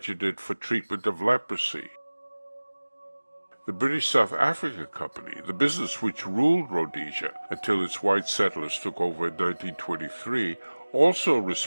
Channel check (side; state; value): both; inverted; correlation -1.00